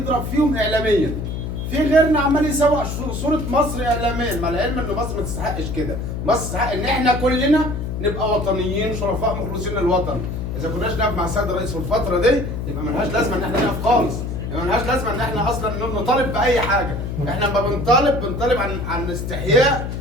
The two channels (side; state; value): left; noise; hum, 4 dB below the sound